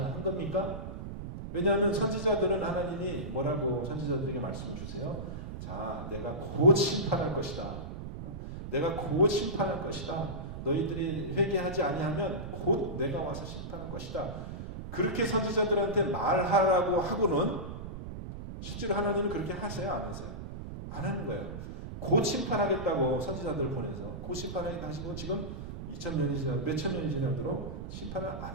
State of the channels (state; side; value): noise; right; rumble, 8 dB below the sound